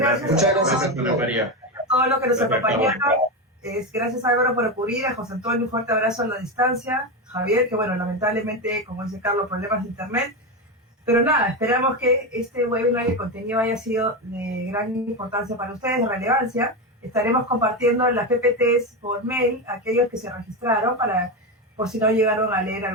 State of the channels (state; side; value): normal; both; correlation 0.14